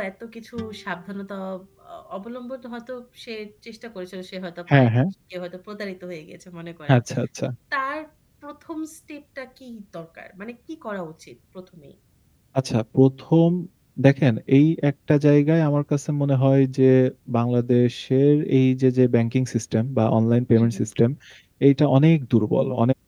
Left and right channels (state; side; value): identical; both; correlation 1.00